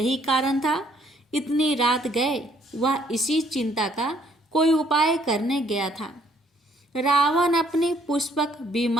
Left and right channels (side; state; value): both; normal; correlation 0.66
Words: कारण था। इतनी रात गए वह इसी चिंता का कोई उपाय करने गया था। रावण अपने पुष्पक